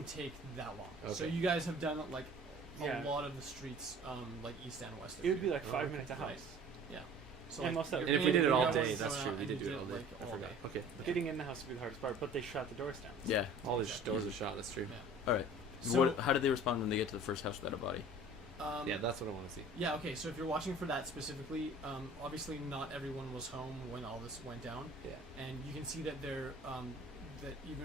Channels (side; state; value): both; normal; correlation 0.46